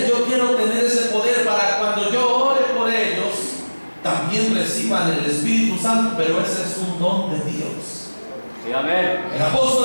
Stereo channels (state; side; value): inverted; both; correlation -1.00